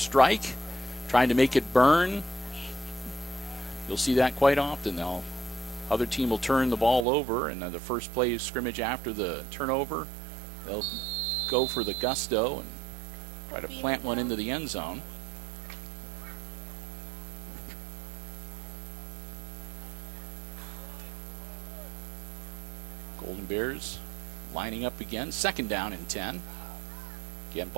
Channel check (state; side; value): drops out; left; at 7.1 s